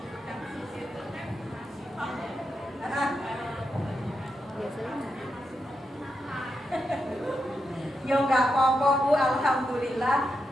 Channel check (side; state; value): both; normal; correlation 0.85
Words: Yo nggak apa-apa Bu, alhamdulillah.